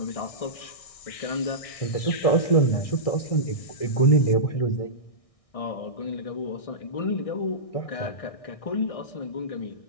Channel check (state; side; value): late; right; 1.6 ms